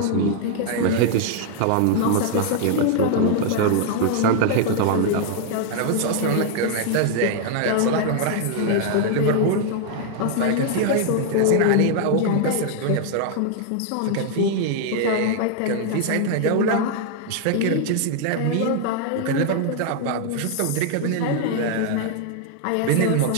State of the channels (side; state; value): both; different; correlation 0.00